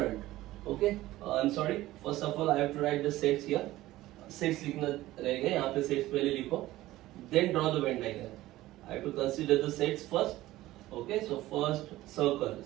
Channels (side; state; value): left; quieter; 16.4 dB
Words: Okay, I am sorry, first of all I have to write the sets here. Sets लिखना रहेगा यहाँ पे. Sets पहले लिखो, then draw the Venn diagram. I have to consider the sets first. Okay, so first circle.